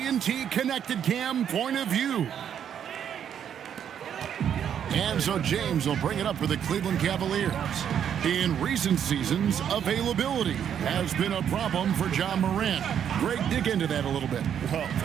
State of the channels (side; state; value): left; quieter; 8.9 dB